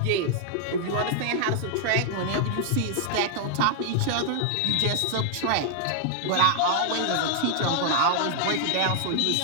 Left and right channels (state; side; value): different; both; correlation -0.01